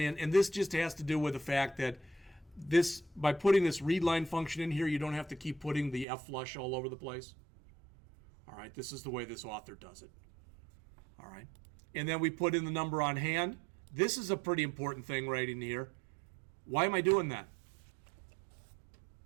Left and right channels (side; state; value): left; drops out; at 6.1 s